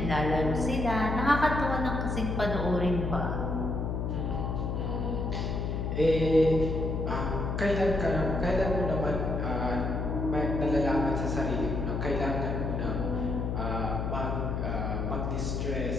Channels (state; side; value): noise; left; hum, 1 dB below the sound